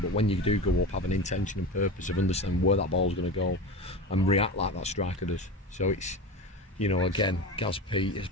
but when you do go up, have an intention and purpose of understanding where that ball's going to go and react like that striker does. So it's, again, Gaz Pete has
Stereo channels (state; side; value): normal; both; correlation 0.27